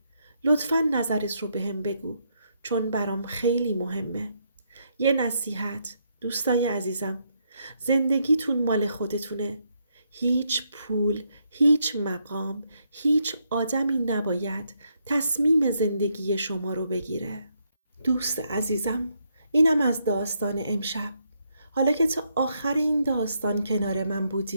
لطفاً نظرت رو بهم بگو، چون برام خیلی مهمه. یه نصیحت دوستای عزیزم، زندگیتون مال خودتونه. هیچ پول، هیچ مقام، هیچ آدمی نباید تصمیم زندگی شما رو بگیره. دوست عزیزم، اینم از داستان امشب. حالا که تا آخر این داستان کنار من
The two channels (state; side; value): inverted; both; correlation -0.77